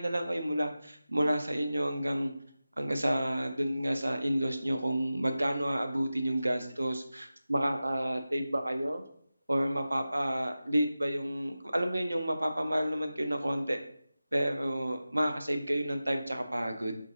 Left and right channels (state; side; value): inverted; both; correlation -0.95